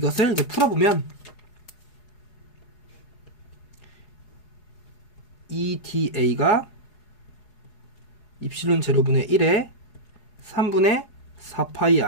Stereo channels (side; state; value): right; late; 4.8 ms